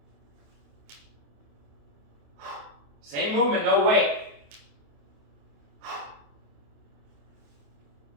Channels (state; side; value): late; left; 28 ms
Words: Same movement, no weight.